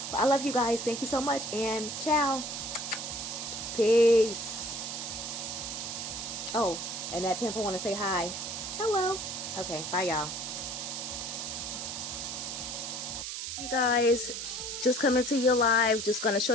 But I love you guys. Thank you so much, and ciao. Peace. Oh, and that pimple want to say hi. Hello. Okay, bye y'all. You guys, just coming to you live. Just gonna show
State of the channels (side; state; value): right; noise; hiss, 5 dB below the sound